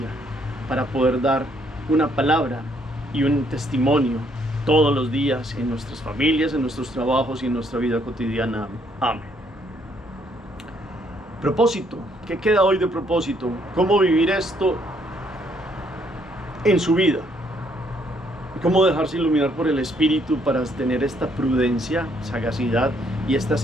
para poder dar una palabra y un testimonio todos los días en nuestras familias, en nuestros trabajos y en nuestra vida cotidiana. Amén. Propósito. ¿Qué queda hoy de propósito? ¿Cómo vivir esto en su vida? ¿Cómo dejarse iluminar por el Espíritu para tener esta prudencia, sagacidad y esta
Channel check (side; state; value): both; normal; correlation 0.69